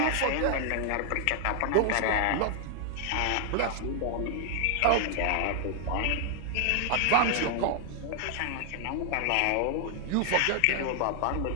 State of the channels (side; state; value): both; different; correlation 0.00